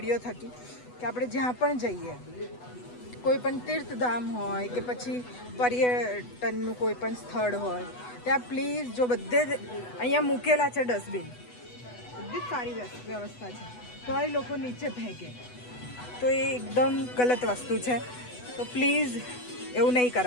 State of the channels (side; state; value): right; late; 8.1 ms